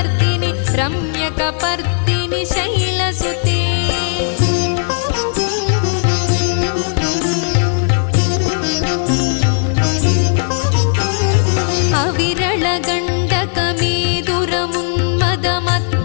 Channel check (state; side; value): silent; right; digital silence